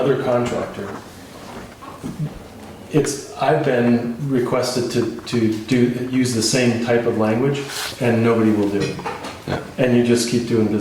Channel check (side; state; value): both; identical; correlation 1.00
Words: contractor. I've been requested to use the same type of language, and nobody will do it. Yeah. And you just keep doing